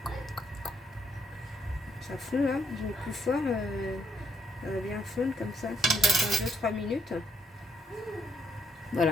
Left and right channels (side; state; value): both; normal; correlation 0.71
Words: Ça fond là. Je mets plus fort. Ça va bien fondre comme ça. J'attends 2-3 minutes.